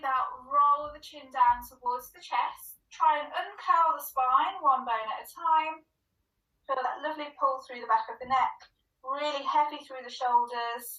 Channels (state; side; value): identical; both; correlation 1.00